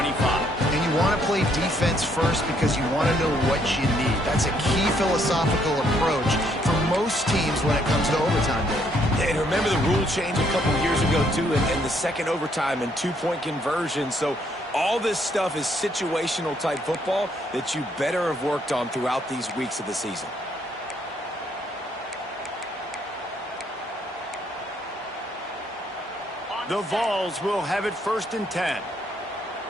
And you want to play defense first because you want to know what you need. That's a key philosophical approach for most teams when it comes to overtime, Dave. Yeah, and remember the rule change a couple years ago, too, and the second overtime and two-point conversion. So all this stuff is situational type football that you better have worked on throughout these weeks of the season. The Vols will have it 1st and 10.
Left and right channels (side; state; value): both; normal; correlation 0.70